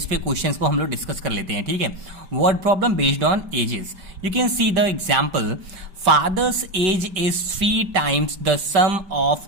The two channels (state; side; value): late; left; 5.1 ms